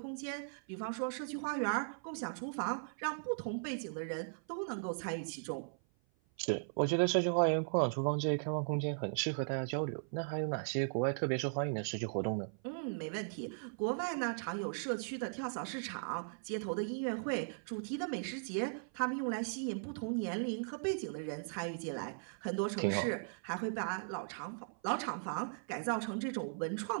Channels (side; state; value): left; silent; 52 dB below the other